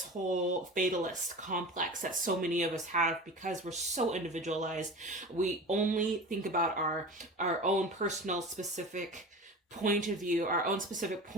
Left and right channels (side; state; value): both; normal; correlation 0.32